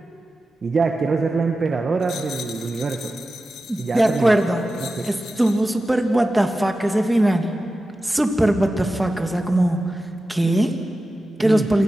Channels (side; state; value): both; normal; correlation 0.93